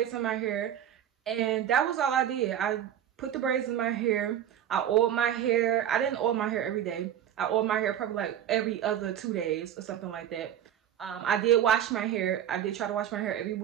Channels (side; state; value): left; quieter; 10.4 dB